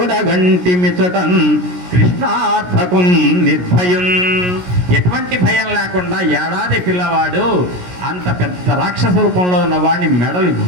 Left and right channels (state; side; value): late; left; 17 ms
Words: కృష్ణార్థకున్ నిర్భయం. ఎటువంటి భయం లేకుండా ఏడాది పిల్లవాడు అంత పెద్ద రాక్షస రూపంలో ఉన్న వాడిని మెడలు